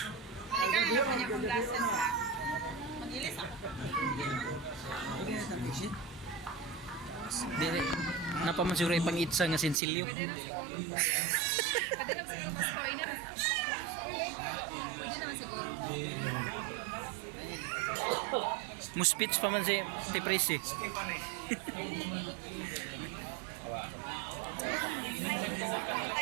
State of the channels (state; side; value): drops out; left; at 9.8 s